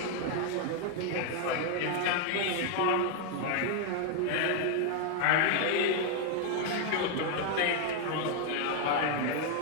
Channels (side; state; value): both; different; correlation 0.00